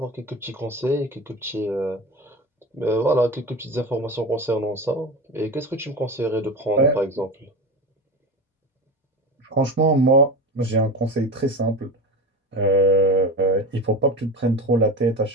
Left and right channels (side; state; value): both; normal; correlation 0.26